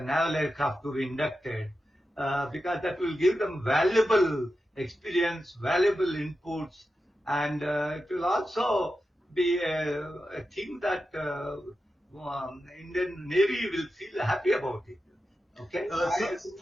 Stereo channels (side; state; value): both; normal; correlation 0.91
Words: aircraft to be inducted, because that will give them valuable experience, valuable inputs, and it will also be a thing that Indian Navy will feel happy about it. Okay, I look